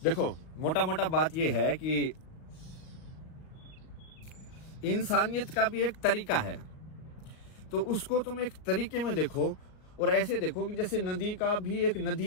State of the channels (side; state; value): right; late; 38 ms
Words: देखो मोटा मोटा बात ये है कि इंसानियत का भी एक तरीका है, तो उसको तुम एक तरीके में देखो, और ऐसे देखो कि जैसे नदी का भी एक